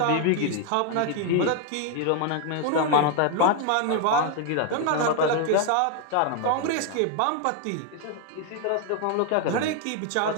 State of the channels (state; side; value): different; both; correlation 0.00